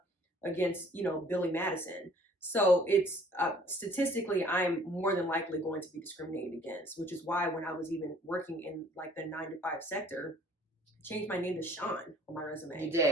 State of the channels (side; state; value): both; normal; correlation 0.55